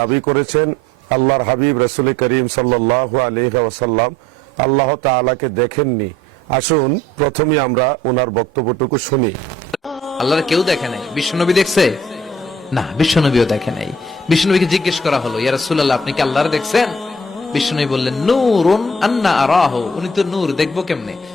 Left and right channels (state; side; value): normal; both; correlation 0.56